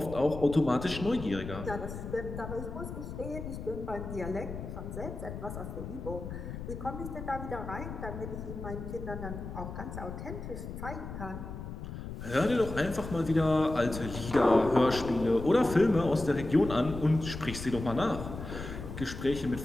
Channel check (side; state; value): left; noise; rumble, 8 dB below the sound